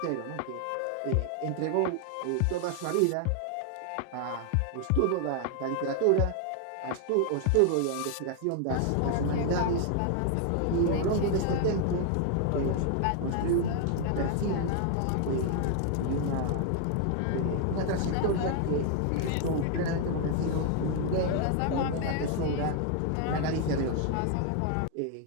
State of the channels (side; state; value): both; different; correlation 0.00